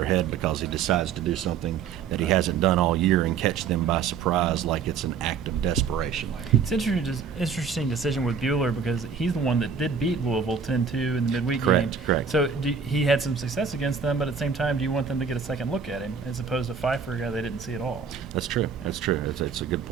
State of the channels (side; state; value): left; quieter; 6.2 dB